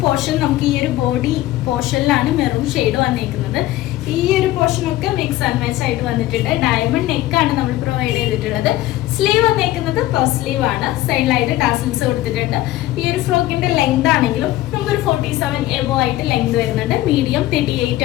പോർഷൻ നമുക്ക് ഈ ഒരു ബോഡി പോർഷനിലാണ് മെറൂൺ ഷെയ്ഡ് വന്നിരിക്കുന്നത്. ഈ ഒരു പോർഷൻ ഒക്കെ മിക്സ് ആൻഡ് മാച്ച് ആയിട്ട് വന്നിട്ടുണ്ട്. ഡയമണ്ട് നെക്കാണ് നമ്മൾ പ്രൊവൈഡ് ചെയ്തിട്ടുള്ളത്. സ്ലീവ് വന്നിരിക്കുന്നത് പഫ് സ്ലീവ് ആണ്. സൈഡിലായിട്ട് ടാസിൽസ് കൊടുത്തിട്ടുണ്ട്. ഈ ഒരു ഫ്രോക്കിന്റെ ലെങ്ത് ആണെങ്കിലും നമുക്കൊരു 47 എബോ ആയിട്ട് ലെങ്ത് വരുന്നുണ്ട്. മീഡിയം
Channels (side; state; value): right; quieter; 15.7 dB